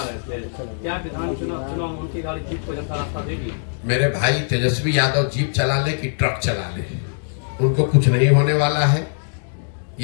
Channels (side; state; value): right; silent; digital silence